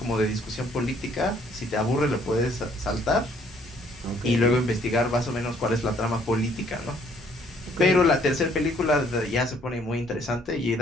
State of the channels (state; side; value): normal; both; correlation 0.63